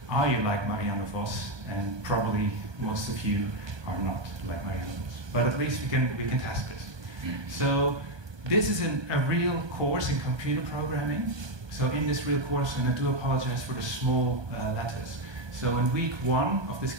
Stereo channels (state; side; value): late; left; 1.2 ms